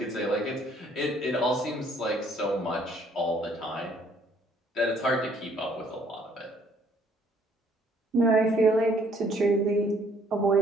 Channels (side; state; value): both; normal; correlation 0.63